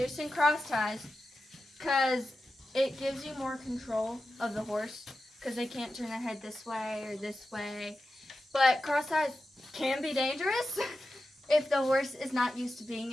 in cross ties, because it gives you more control of the horse, because they can't turn their head this way or this way. But cross ties can be dangerous if the horse is not used to being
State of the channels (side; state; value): both; normal; correlation 0.92